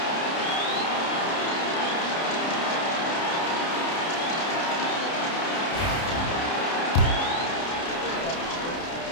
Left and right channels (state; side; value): late; right; 30 ms